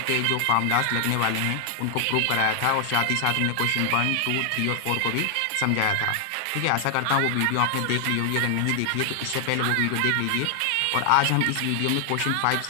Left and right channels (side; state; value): both; different; correlation 0.00